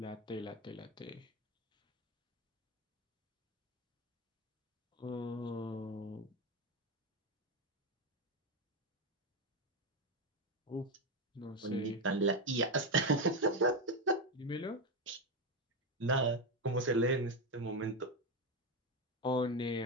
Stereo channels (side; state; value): both; normal; correlation 0.11